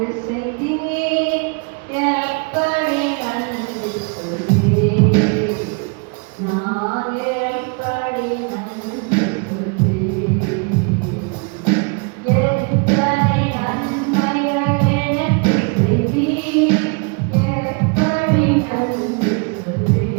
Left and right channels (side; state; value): left; quieter; 34.1 dB